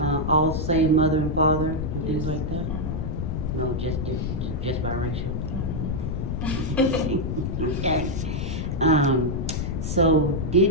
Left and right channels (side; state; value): left; noise; rumble, 2 dB below the sound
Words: All same mother and father and things Yes. like that? No, just different, just biracial. Okay. So